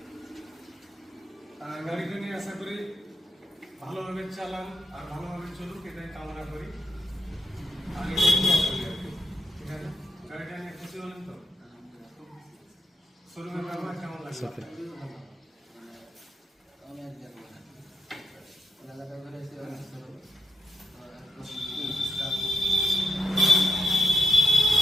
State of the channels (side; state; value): both; normal; correlation 0.83